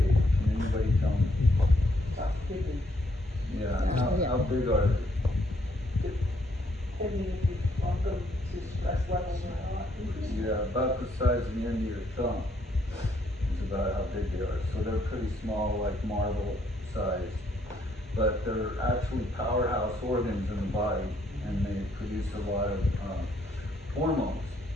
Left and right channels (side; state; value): both; normal; correlation 0.70